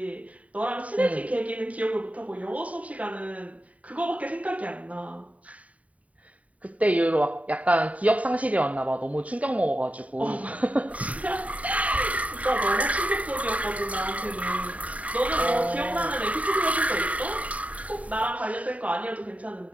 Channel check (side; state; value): left; late; 0.068 ms